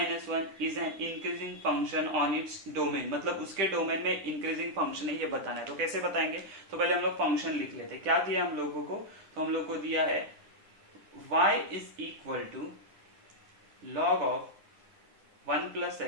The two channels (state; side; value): late; left; 10 ms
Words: is an increasing function on its domain। मतलब उसके डोमेन में इंक्रीजिंग फंक्शन है, ये बताना है। तो कैसे बताएंगे, तो पहले हम लोग फंक्शन लिख लेते हैं। क्या दिया हम लोगों को, तो हम लोग को दिया है y is equal to log of 1 plus